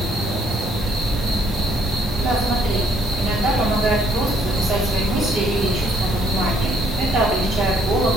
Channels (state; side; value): normal; both; correlation 0.66